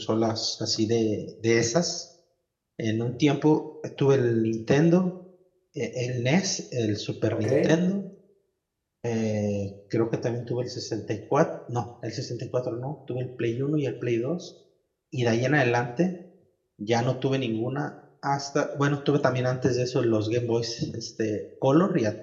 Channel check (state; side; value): identical; both; correlation 1.00